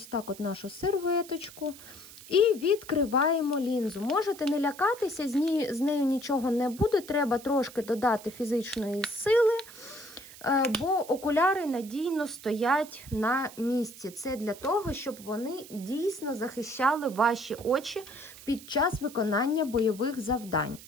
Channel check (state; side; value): noise; right; hiss, 18 dB below the sound